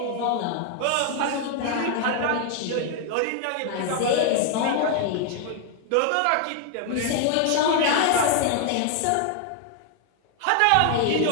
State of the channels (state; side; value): different; both; correlation 0.00